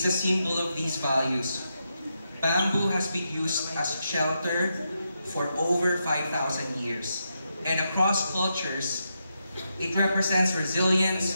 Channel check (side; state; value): both; inverted; correlation -0.84